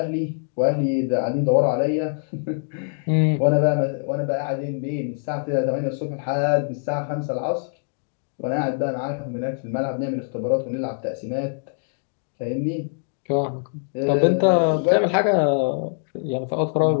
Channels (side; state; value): right; silent; digital silence